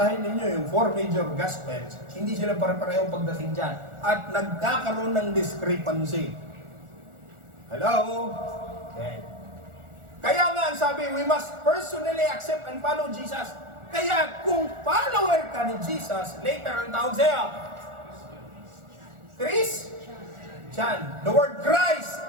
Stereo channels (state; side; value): late; left; 1.4 ms